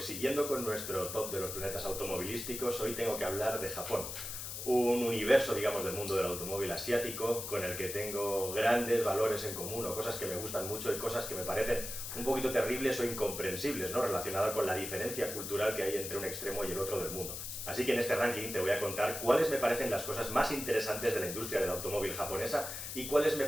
siguiendo con nuestro top de los planetas automovilísticos, hoy tengo que hablar de Japón, un universo, digamos, del mundo del automóvil asiático con el que tengo grandes valores en común o cosas que me gustan mucho y cosas que me parecen un poquito terribles o incomprensibles, ¿no? Relacionada con la diferencia cultural que hay entre un extremo y el otro del mundo. Así que en este ranking te voy a contar cuáles me parecen las cosas más interesantes de la industria del automóvil japonesa y cuáles me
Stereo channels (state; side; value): noise; left; hiss, 6 dB below the sound